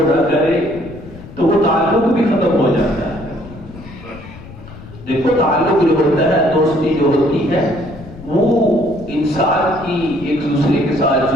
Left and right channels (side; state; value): left; noise; rumble, 16 dB below the sound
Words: نہ کرے، تو وہ تعلق بھی ختم ہو جاتا ہے۔ دیکھو، تعلق جو ہوتا ہے، دوستی جو ہوتی ہے، وہ انسان کی ایک دوسرے کے ساتھ